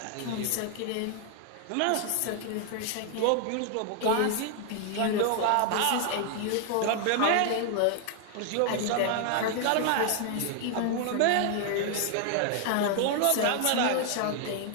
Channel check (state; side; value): different; both; correlation 0.00